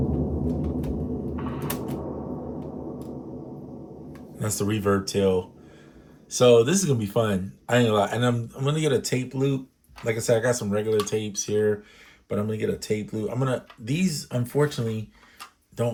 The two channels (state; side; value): identical; both; correlation 1.00